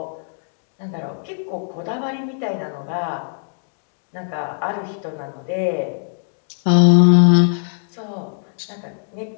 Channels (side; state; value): right; silent; digital silence